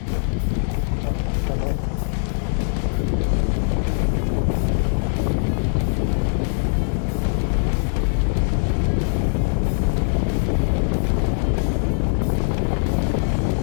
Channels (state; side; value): silent; right; 65 dB below the other